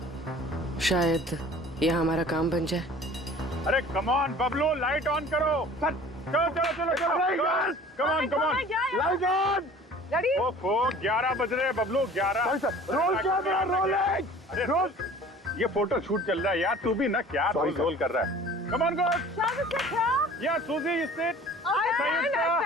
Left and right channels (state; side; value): normal; both; correlation 0.46